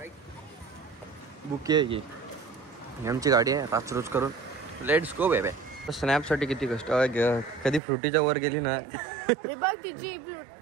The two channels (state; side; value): drops out; left; at 7.8 s